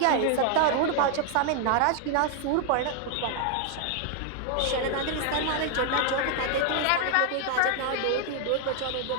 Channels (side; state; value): both; different; correlation 0.00